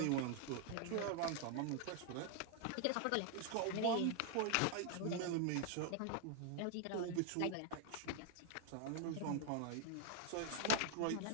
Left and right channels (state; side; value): different; both; correlation 0.00